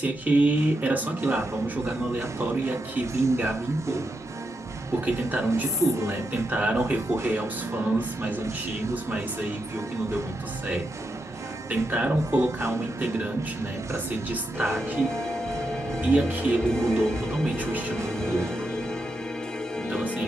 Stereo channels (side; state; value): both; normal; correlation 0.85